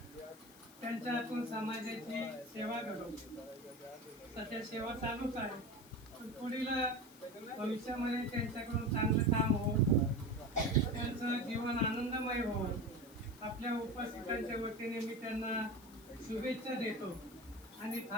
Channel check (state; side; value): noise; left; hiss, 22 dB below the sound